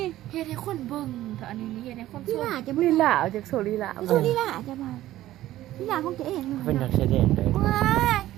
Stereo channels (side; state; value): left; quieter; 14.6 dB